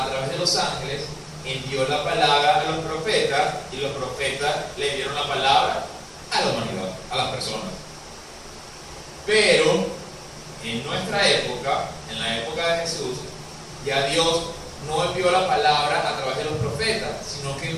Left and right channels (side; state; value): both; identical; correlation 1.00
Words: través de los ángeles, envió la palabra a los profetas y los profetas le dieron la palabra a la humanidad, a las personas. Pero en nuestra época, en la época de Jesús, ya Dios no envió la palabra a través de los profetas, sino que